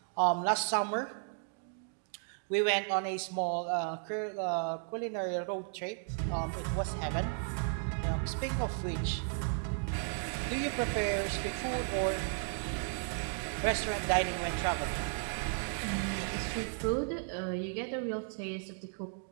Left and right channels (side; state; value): left; silent; 55 dB below the other